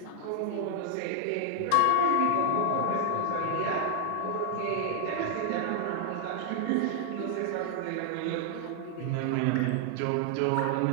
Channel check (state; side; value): different; both; correlation 0.00